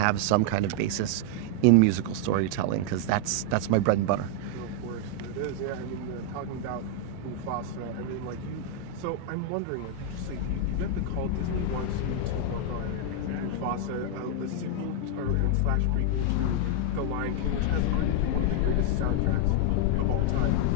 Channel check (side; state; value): both; different; correlation 0.00